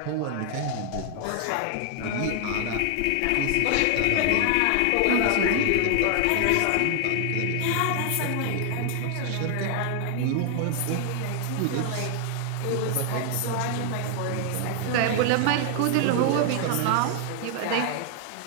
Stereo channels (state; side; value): different; both; correlation 0.00